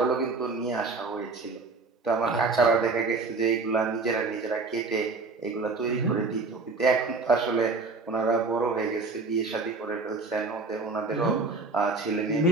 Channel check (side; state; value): left; quieter; 3.9 dB